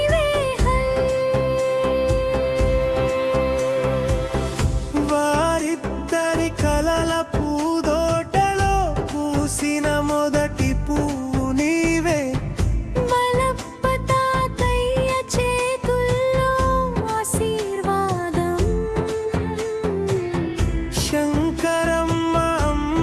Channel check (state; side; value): identical; both; correlation 1.00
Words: వారిద్దరి కలల పూదోటలో పూసిన మొదటి పువ్వు నీవే, మలప్ప తాతయ్య చేతుల్లో ఆశీర్వాదం, శంకరమ్మ